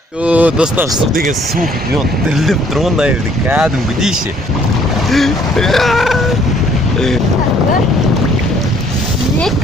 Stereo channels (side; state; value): both; normal; correlation 0.62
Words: Достар, су деген суық, мен дірілдеп тұрмын мына жерде кәдімгідей ше.